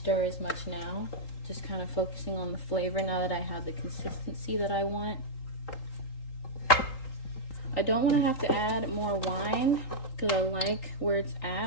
as much now. Just kind of focusing on the flavor now that I have the consistency that I want. I don't want to have to add more wine because I like where it's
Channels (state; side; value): late; right; 3.8 ms